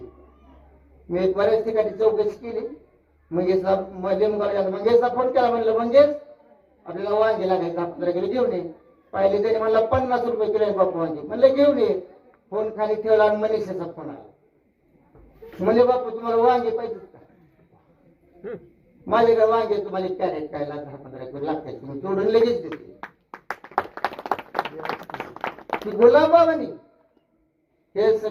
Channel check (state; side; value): identical; both; correlation 1.00